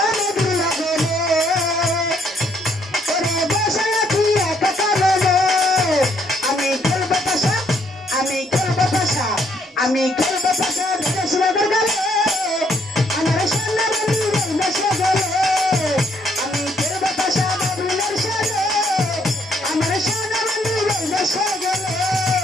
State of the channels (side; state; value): both; normal; correlation 0.70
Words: নদীর লগনে ওরে বসে আছি একা কারণে আমি খেলবো পাশা আমি খেলবো পাশা আমি খেলবো পাশা বিদেশ নগর গেলে আমার সোনা বন্ধু বসে গেলে আমি খেলবো পাশা বাবুলের সাথে আমার সোনা বন্ধু বসে গেলে